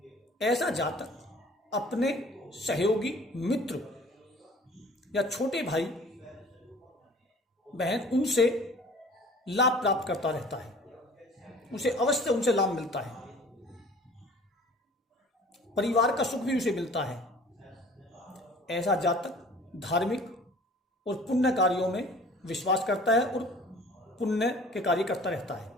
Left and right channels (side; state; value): both; normal; correlation 0.48